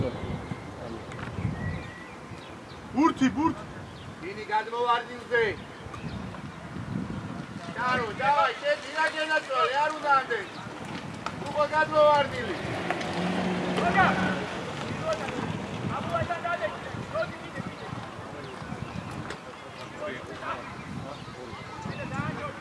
ბურთი. ინი გადმოვარდინზე. ჩარო, დავაი, შეძინა გენაცვალე, არ უნდა ამდენ. უკვე გადმოვარდილი.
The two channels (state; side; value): identical; both; correlation 1.00